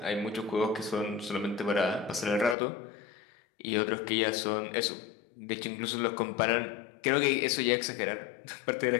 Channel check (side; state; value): right; drops out; at 2.6 s